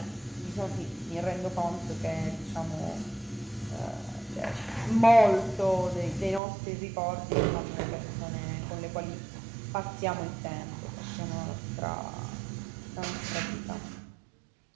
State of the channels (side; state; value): left; drops out; at 6.4 s